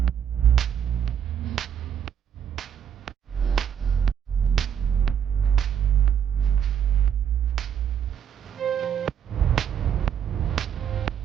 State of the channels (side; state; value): left; quieter; 8.5 dB